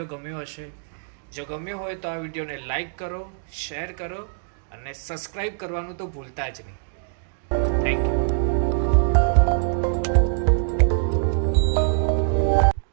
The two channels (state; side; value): silent; left; digital silence